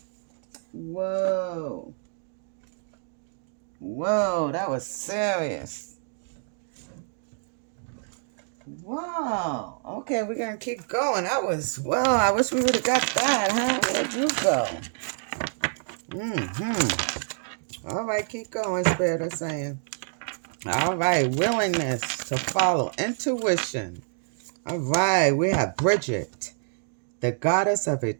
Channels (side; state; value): left; silent; digital silence